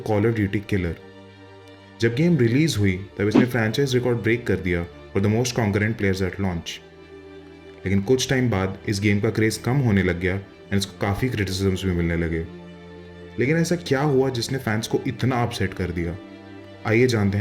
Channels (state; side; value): identical; both; correlation 1.00